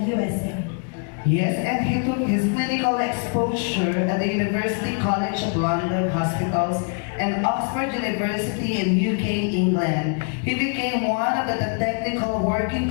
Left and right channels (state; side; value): quieter; right; 39.5 dB